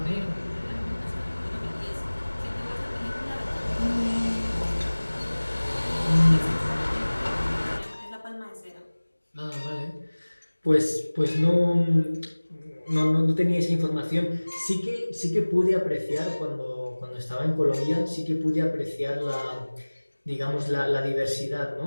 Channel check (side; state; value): both; inverted; correlation -1.00